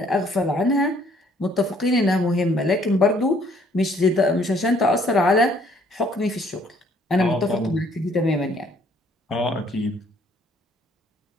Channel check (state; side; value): normal; both; correlation 0.62